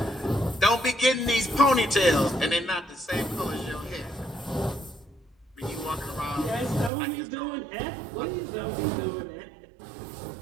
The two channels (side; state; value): left; drops out; at 6.9 s